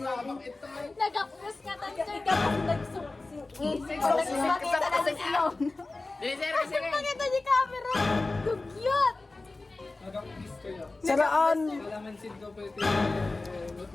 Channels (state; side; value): quieter; right; 3.3 dB